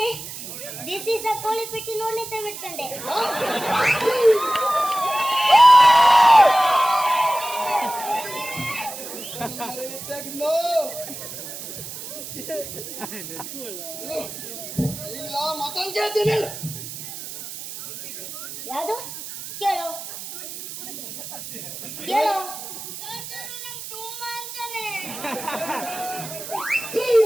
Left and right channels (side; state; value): right; noise; hiss, 10 dB below the sound